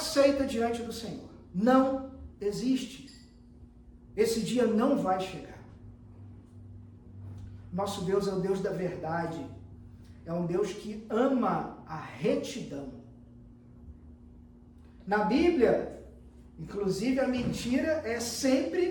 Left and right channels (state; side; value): identical; both; correlation 1.00